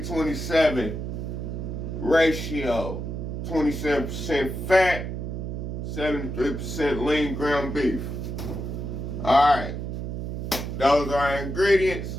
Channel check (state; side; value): noise; right; hum, 5 dB below the sound